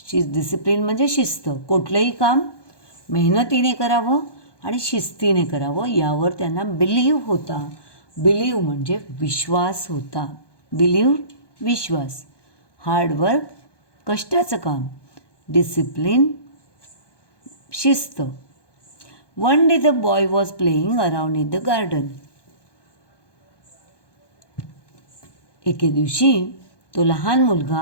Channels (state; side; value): late; right; 1.2 ms